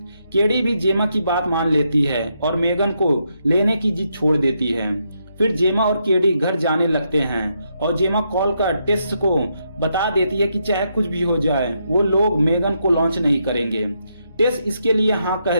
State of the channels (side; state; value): both; inverted; correlation -0.79